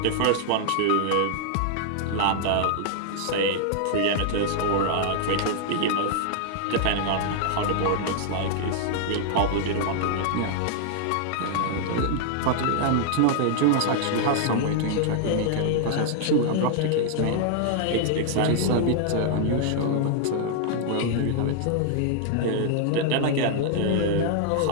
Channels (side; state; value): both; different; correlation -0.01